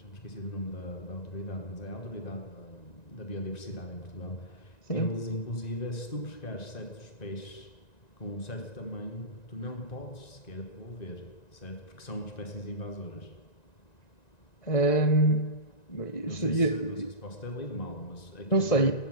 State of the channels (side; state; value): right; late; 1.9 ms